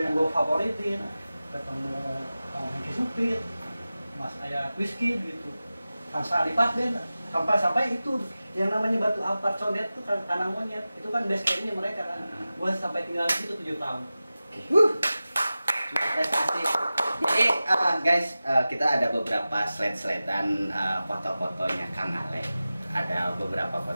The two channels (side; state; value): both; inverted; correlation -0.96